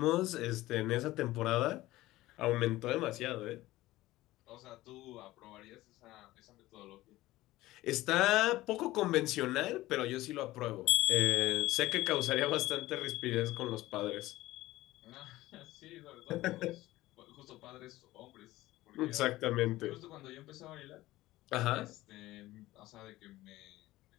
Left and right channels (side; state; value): right; quieter; 17.3 dB